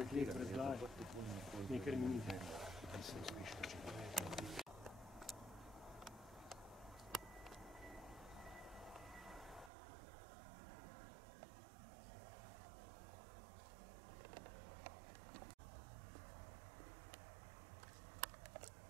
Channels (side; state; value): left; drops out; at 9.7 s